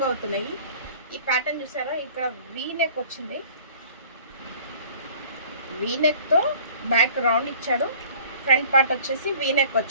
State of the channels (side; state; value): both; inverted; correlation -0.50